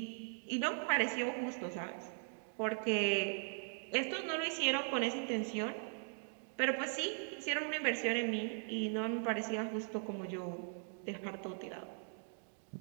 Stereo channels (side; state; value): left; silent; 52 dB below the other